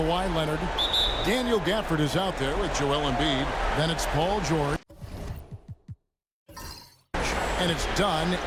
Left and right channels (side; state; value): both; identical; correlation 1.00